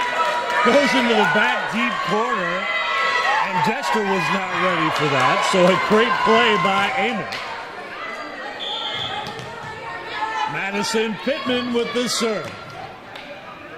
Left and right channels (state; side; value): identical; both; correlation 1.00